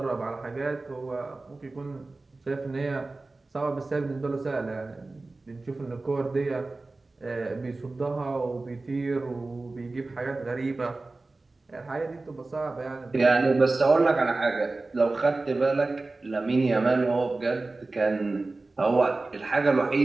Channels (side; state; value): left; quieter; 3.3 dB